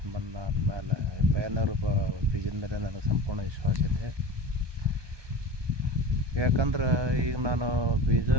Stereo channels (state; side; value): late; left; 1.2 ms